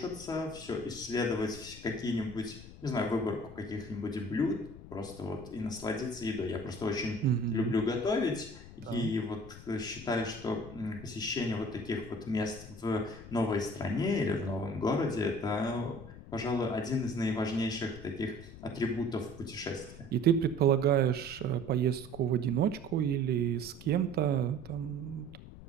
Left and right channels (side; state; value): left; noise; rumble, 15 dB below the sound